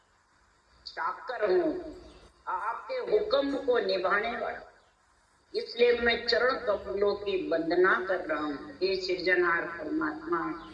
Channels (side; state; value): both; identical; correlation 1.00